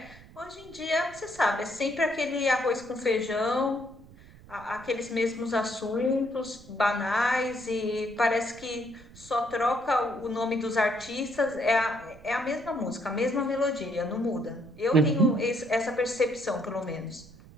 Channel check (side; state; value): right; noise; rumble, 21 dB below the sound